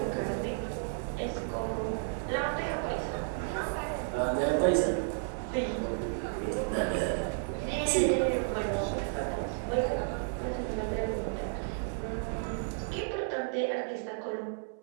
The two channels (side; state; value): left; silent; 56 dB below the other